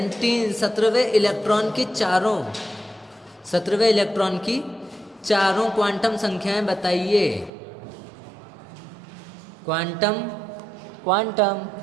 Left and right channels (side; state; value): left; drops out; at 7.5 s